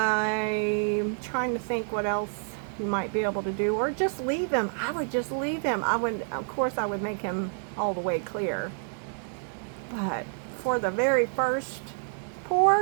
trying to think what else you might be able to do, or just leave him. I would just leave him. Of course I would make him all the way clear, but for the very first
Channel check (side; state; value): left; silent; digital silence